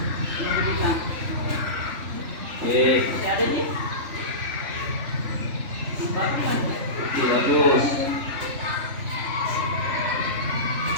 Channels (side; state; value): left; late; 3.4 ms